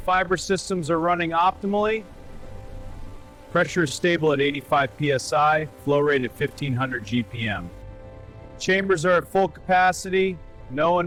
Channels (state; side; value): identical; both; correlation 1.00